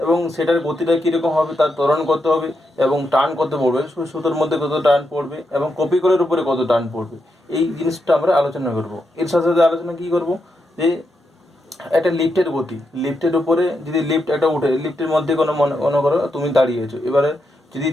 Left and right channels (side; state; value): both; normal; correlation 0.84